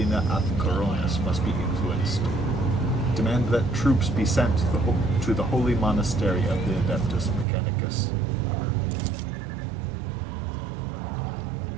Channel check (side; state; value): left; drops out; at 7.5 s